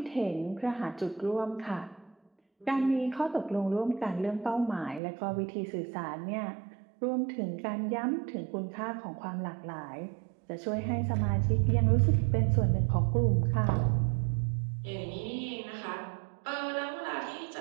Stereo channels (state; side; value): drops out; left; at 5.0 s